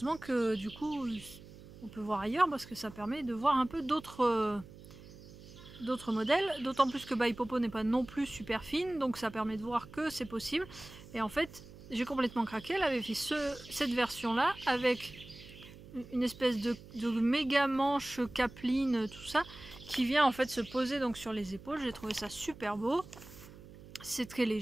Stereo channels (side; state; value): right; noise; hum, 18 dB below the sound